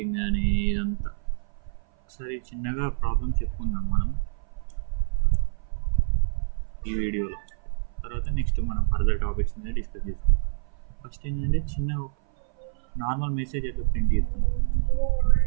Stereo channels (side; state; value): left; silent; 56 dB below the other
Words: కానీ, ఇదంతా ఒకసారి చిన్నగా ప్రాబ్లమ్స్ చెప్పుకుందాం మనం ఈ వీడియోలో. తర్వాత నెక్స్ట్ మనం ఫర్దర్ టాపిక్స్ మీద డిస్కస్ చేస్తాం. ఫస్ట్ ఏంటంటే చిన్న నార్మల్ మెసేజ్ ఎట్లా ప్రింట్ చేస్తాం.